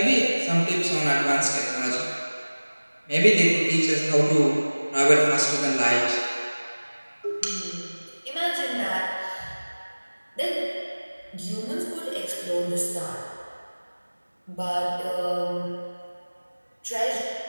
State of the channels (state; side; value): inverted; both; correlation -1.00